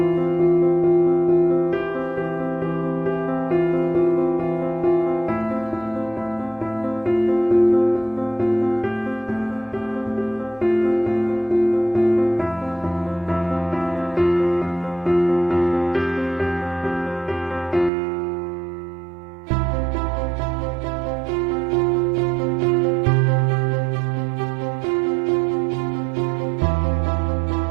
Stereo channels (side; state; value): left; drops out; at 17.9 s